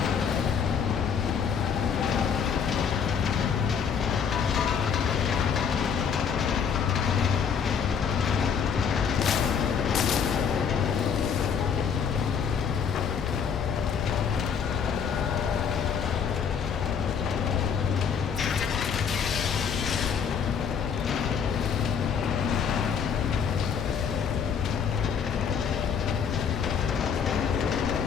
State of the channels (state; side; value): quieter; right; 6.9 dB